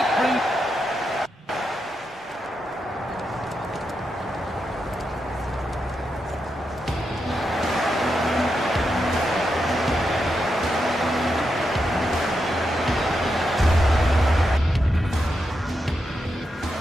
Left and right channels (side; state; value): both; normal; correlation 0.85